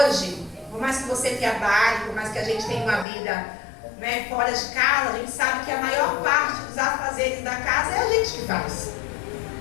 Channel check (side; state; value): right; drops out; at 3.1 s